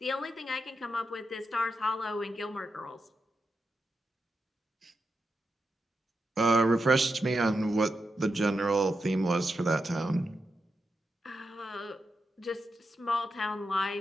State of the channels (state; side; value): normal; both; correlation 0.87